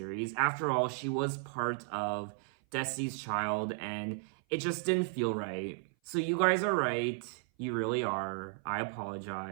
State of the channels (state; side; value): silent; left; 55 dB below the other